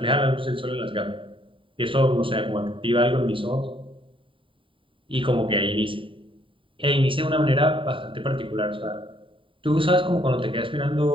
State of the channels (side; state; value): left; late; 0.25 ms